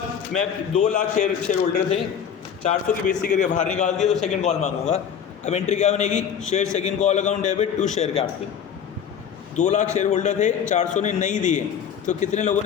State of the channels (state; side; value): quieter; right; 8.0 dB